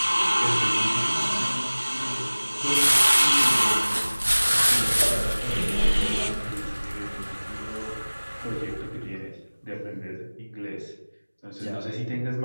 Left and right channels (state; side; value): inverted; both; correlation -1.00